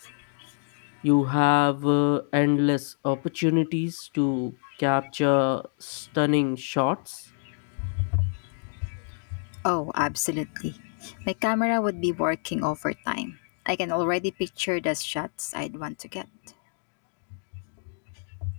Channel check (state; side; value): silent; right; digital silence